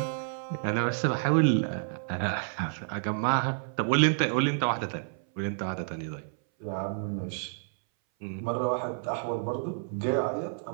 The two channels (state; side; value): silent; left; 58 dB below the other